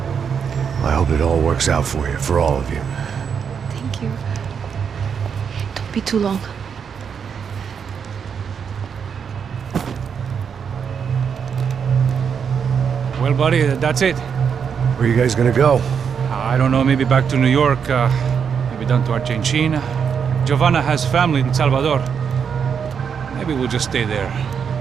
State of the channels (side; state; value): left; quieter; 6.9 dB